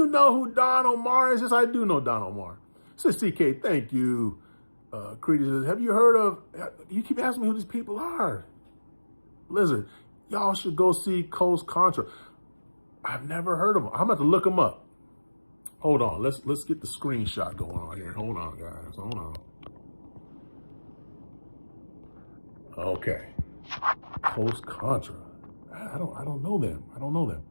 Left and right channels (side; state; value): both; inverted; correlation -1.00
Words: know who Don Omar is? Yes, I do know Don Omar. Says CK, thank you. Creedy says, have you heard of, you keep asking me who these people are. Blizzard, y'all should go see Coast Contra. I've never heard of them. I'm about to look them up. Hold on, let's get the screenshot going on here. Hold on, guys, hold on. Okay, Coast Contra. I don't know them. I don't know them.